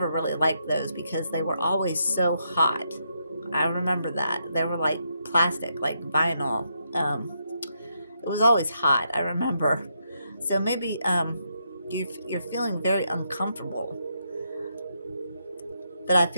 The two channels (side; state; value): both; inverted; correlation -0.79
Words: really liked those because they were always so hot. I remember that. They were like plastic, like vinyl. It was always hot, I remember. So maybe you're feeling very uncomfortable. But I